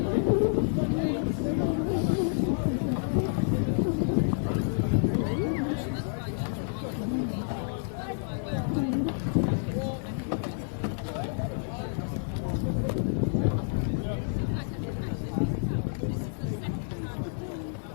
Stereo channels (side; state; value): right; silent; digital silence